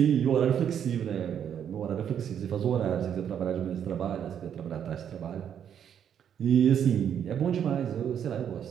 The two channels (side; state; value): left; quieter; 8.8 dB